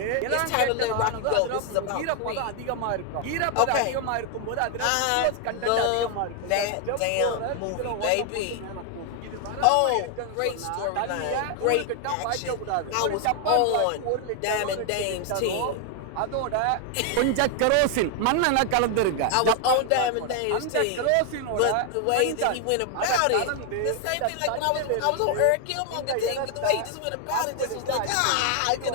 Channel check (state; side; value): different; both; correlation 0.00